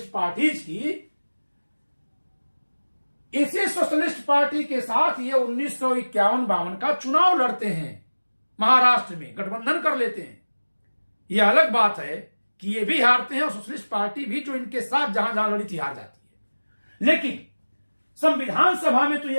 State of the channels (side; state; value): both; inverted; correlation -1.00